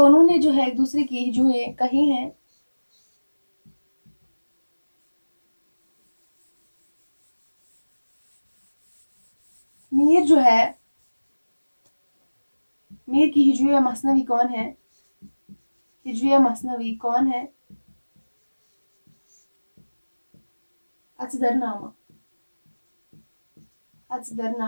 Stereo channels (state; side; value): inverted; both; correlation -1.00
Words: ने जो है एक दूसरे की हिजुएं कही हैं। मीर जो है मीर की हिजुए मसनवी कौन है? हिजुए मसनवी कौन है? अजदरनामा।